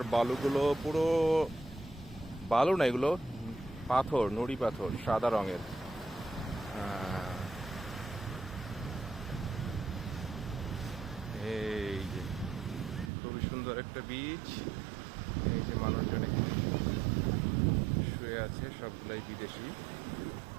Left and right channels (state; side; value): drops out; left; at 13.1 s